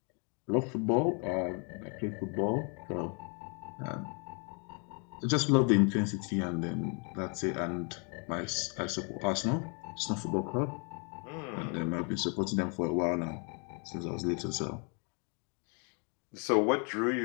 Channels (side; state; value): right; quieter; 36.8 dB